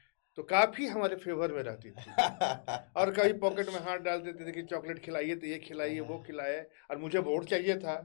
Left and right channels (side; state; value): right; silent; digital silence